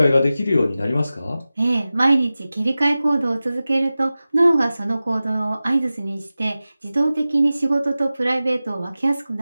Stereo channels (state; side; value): inverted; both; correlation -0.96